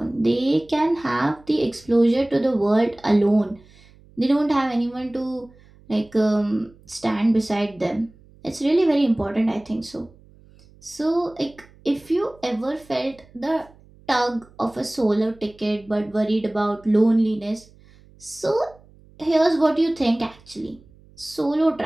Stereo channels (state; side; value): noise; right; hum, 26 dB below the sound